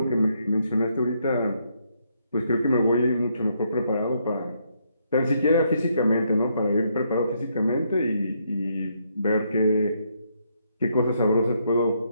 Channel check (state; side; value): inverted; both; correlation -0.74